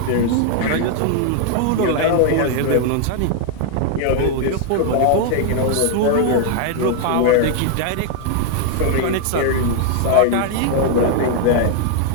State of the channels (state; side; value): different; both; correlation 0.00